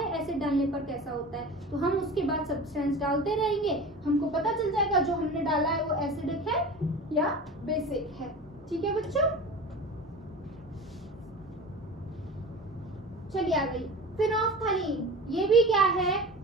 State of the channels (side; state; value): both; normal; correlation 0.34